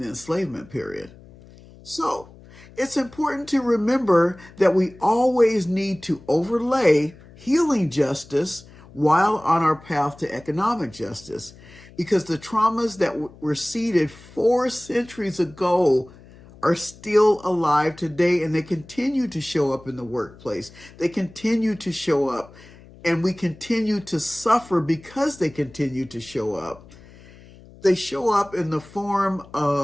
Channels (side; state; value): left; noise; hum, 22 dB below the sound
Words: enslavement period. So, it's important to remember that we always need to overlay healing justice while on our path to economic justice, because the traumas that were seeded 4 centuries ago are still alive today, and they continue to show up in the workplace. They continue to show up, and we continue to suffer because they continue to show up. They show up in the form